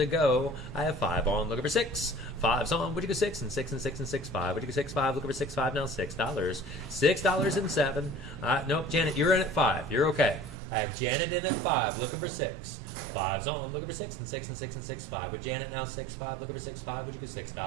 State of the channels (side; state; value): left; drops out; at 10.6 s